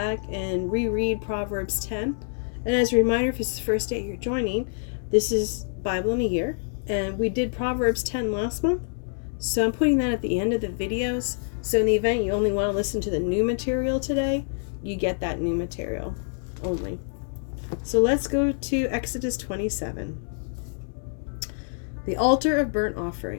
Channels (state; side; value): silent; right; digital silence